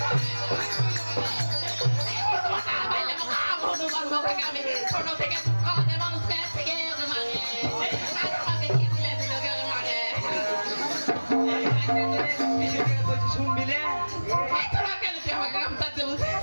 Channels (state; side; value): inverted; both; correlation -1.00